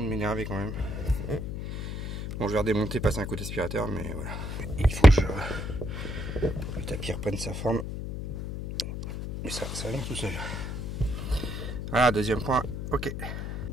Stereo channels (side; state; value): left; noise; hum, 5 dB below the sound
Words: m'énerver quand même. Bon, je vais redémonter, passer un coup d'aspirateur, mais voilà. Il faut que le tapis reprenne sa forme. Et ça vient tout seul. Voilà, deuxième point, ok.